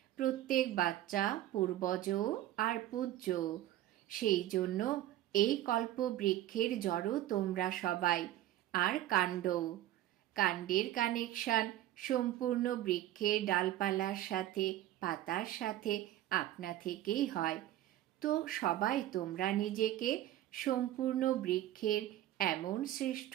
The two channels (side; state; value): left; quieter; 13.6 dB